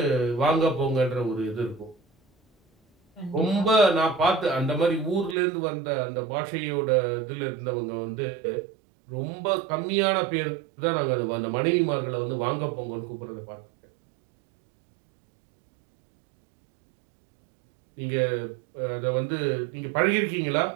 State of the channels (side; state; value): left; drops out; at 5.4 s